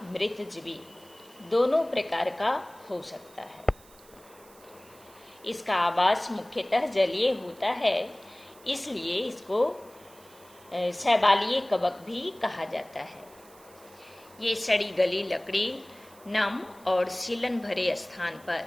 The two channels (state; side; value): noise; right; hiss, 25 dB below the sound